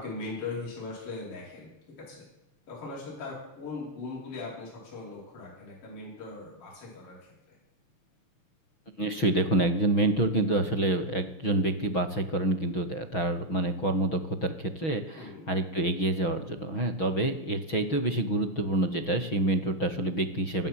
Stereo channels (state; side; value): late; right; 6.2 ms